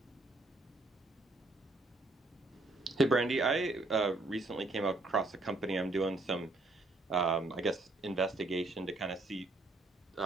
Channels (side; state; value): left; quieter; 3.0 dB